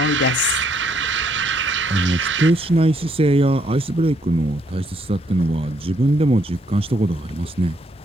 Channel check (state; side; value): normal; both; correlation 0.71